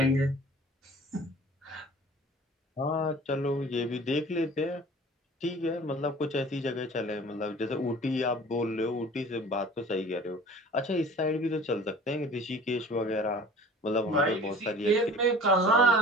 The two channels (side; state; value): both; normal; correlation 0.45